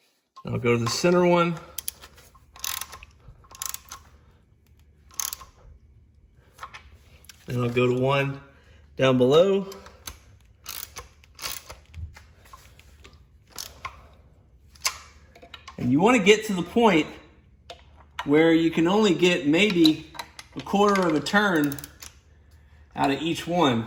I'll go to the center one. Then I'll go to one down below. And you want to get to the point where you can only get maybe a quarter of a turn out of each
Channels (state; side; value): identical; both; correlation 1.00